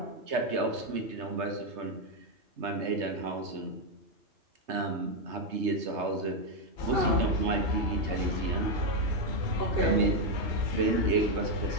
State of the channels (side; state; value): left; late; 3.3 ms